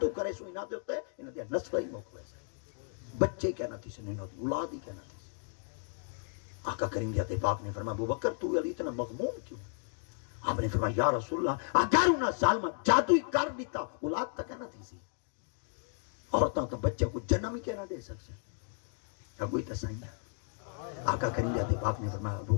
کرے سو نہ دیتے انہاں دیا نسل ہی موقع ہے، بچے کیا نہ تھی سے نہیں ہوتی، اولاد ہی کیا نہ تھی سے. آقا کریم ذات پاک نے فرمایا ابوبکر تو علی اتنا مغموم کیوں؟ آپ نے فرمایا یا رسول اللہ اگر انہاں ظالمہ جادو ہی کر دیتا اولاد تک نہ تھی سی، عورتاں تو بچے کو جنم ہی کہنا دے سکتے ہیں. اب کوئی تسائیں گا. آقا کریم ذات پاک نے فرمایا ابو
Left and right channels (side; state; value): right; silent; 55 dB below the other